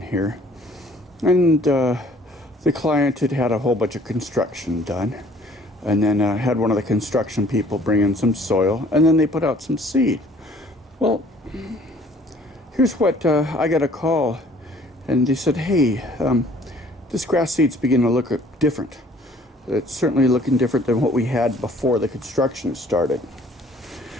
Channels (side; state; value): both; normal; correlation 0.56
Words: here. And the client had had a whole bunch of construction done. And then had one of the construction people bring in some soil, and then they put out some seed. Well, here's what I got a call. And they said, hey, this grass seed's beginning to look different. It's certainly looking different than what we had before the construction started.